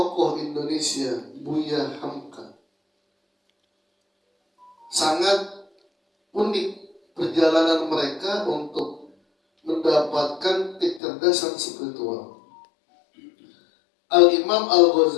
Indonesia Buya Hamka. Sangat unik perjalanan mereka untuk mendapatkan kecerdasan spiritual. Al-Imam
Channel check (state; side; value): drops out; right; at 11.0 s